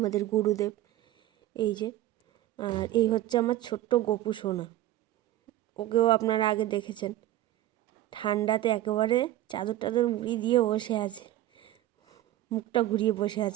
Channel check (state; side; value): quieter; left; 14.1 dB